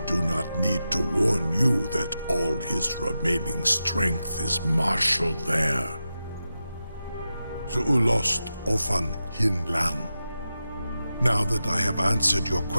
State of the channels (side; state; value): both; inverted; correlation -0.91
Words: do not need to warn you that all his remaining strength is marshaled there. Zuulost ofan hinlan. Now that I have answered your